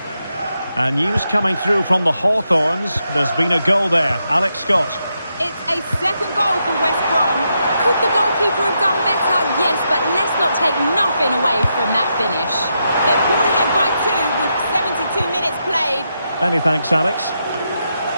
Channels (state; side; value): inverted; both; correlation -0.83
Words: And news coming through from the Hawthorns. There's been a goal there. Alex Scott. It's a second goal for West Brom. Could the goalkeeper have done better? Yes, but let's not take nothing away from that finish. They're pulled ahead by 2 with 72 minutes played. Many thanks, Alex.